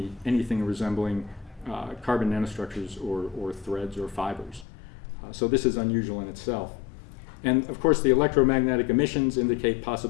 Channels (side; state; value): right; drops out; at 4.7 s